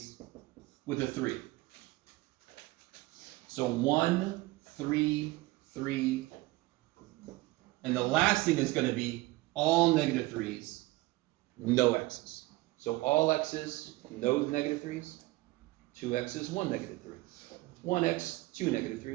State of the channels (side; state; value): left; quieter; 20.2 dB